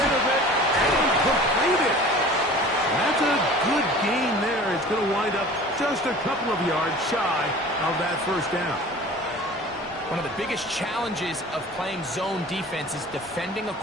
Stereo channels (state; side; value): normal; both; correlation 0.42